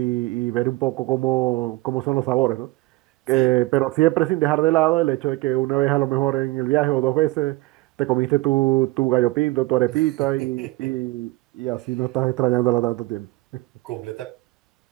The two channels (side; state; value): left; quieter; 20.9 dB